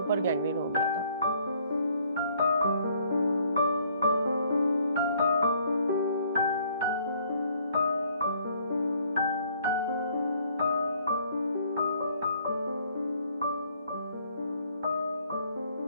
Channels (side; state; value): both; inverted; correlation -0.63